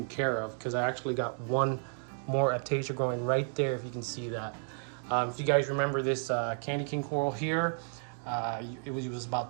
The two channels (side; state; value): left; silent; 56 dB below the other